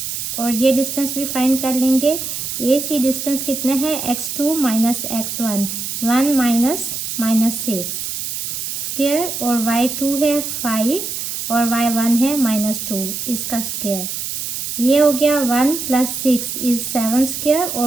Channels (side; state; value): right; noise; hiss, 4 dB below the sound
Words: और ये डिस्टेंस भी फाइंड कर लेंगे। ए सी डिस्टेंस कितना है x2 - x1, 1 - -6 स्क्वायर, और y2 है 5 और y1 है -2 इसका स्क्वायर। ये हो गया 1 + 6 इज 7 स्क्वायर